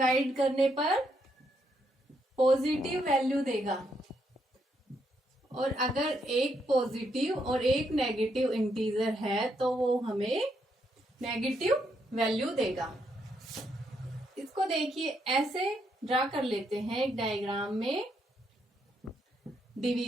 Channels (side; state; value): both; normal; correlation 0.77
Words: करने पर पॉजिटिव वैल्यू देगा, और अगर एक पॉजिटिव और एक नेगेटिव इंटीजर है तो वो हमें नेगेटिव वैल्यू देगा। इसको देखिए ऐसे ड्रा कर लेते हैं एक डायग्राम में।